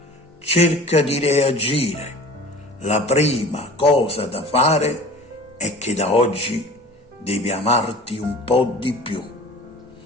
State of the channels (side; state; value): both; normal; correlation 0.42